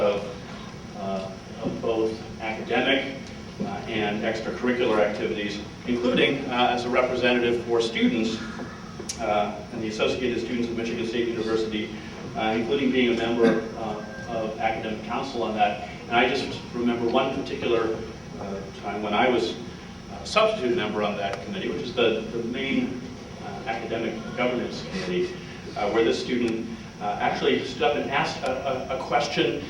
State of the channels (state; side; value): identical; both; correlation 1.00